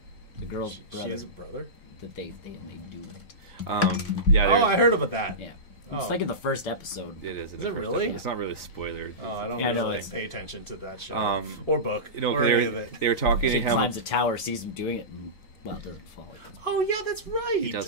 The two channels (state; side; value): late; right; 3.9 ms